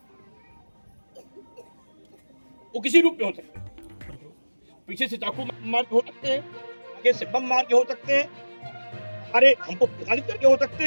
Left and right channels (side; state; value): both; inverted; correlation -1.00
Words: वो किसी रूप में हो सकते हैं। पीछे से चाकू मार के हो सकते हैं, आगे से बम मार के हो सकते हैं, अरे हमको प्रताड़ित करके हो सकते